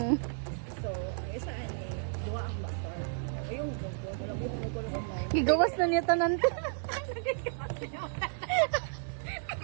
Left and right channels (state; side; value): silent; left; 56 dB below the other